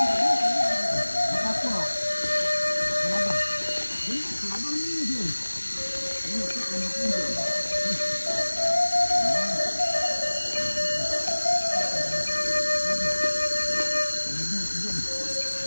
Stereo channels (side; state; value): both; inverted; correlation -1.00